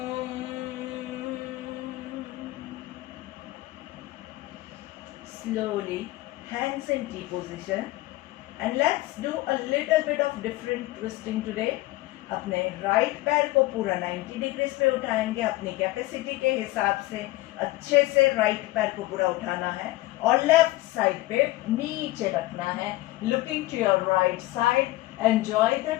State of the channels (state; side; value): quieter; right; 18.4 dB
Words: Slowly, hands in T position, and let's do a little bit of different twisting today. अपने राइट पैर को पूरा 90 डिग्रीज पे उठाएंगे. अपनी कैपेसिटी के हिसाब से अच्छे से राइट पैर को पूरा उठाना है और लेफ्ट साइड पे नीचे रखना है. Looking to your right side. Enjoy the